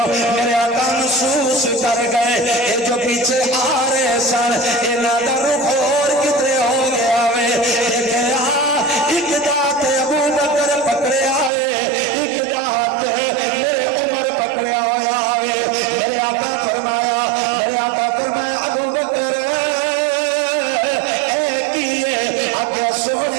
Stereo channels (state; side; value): drops out; left; at 11.5 s